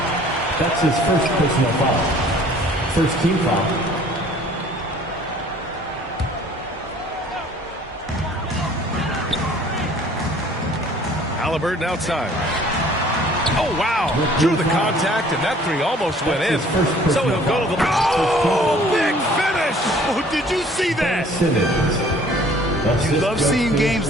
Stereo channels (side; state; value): both; normal; correlation 0.54